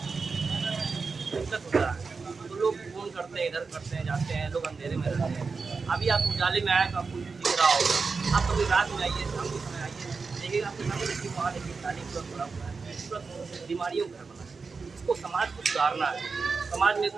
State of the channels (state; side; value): quieter; left; 4.7 dB